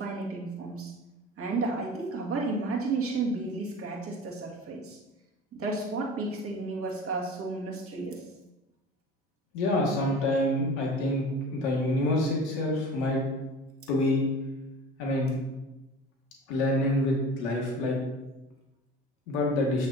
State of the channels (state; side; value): normal; both; correlation 0.39